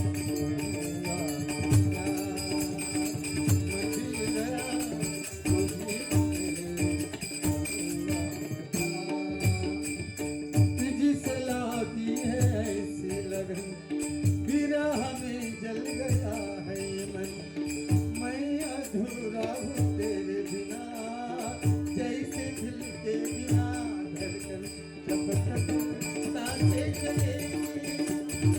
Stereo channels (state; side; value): identical; both; correlation 1.00